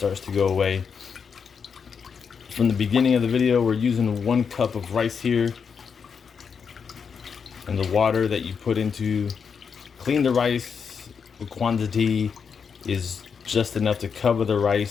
to go away. From the beginning of the video, we're using 1 cup of rice here, and the water that you put into clean the rice, the quantity is just enough to cover the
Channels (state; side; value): quieter; right; 6.3 dB